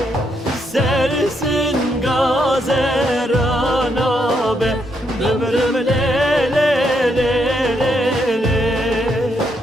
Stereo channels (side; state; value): both; normal; correlation 0.77